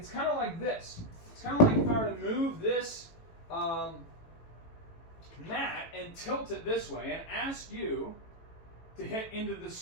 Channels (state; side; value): late; right; 18 ms